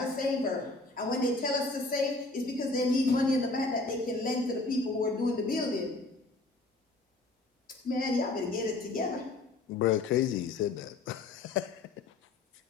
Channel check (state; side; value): quieter; right; 3.3 dB